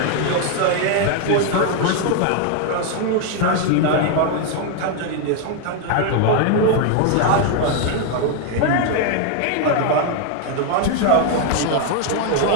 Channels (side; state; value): both; different; correlation 0.00